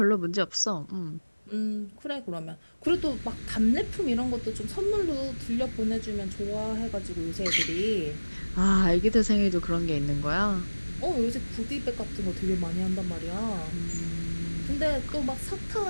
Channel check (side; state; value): both; inverted; correlation -1.00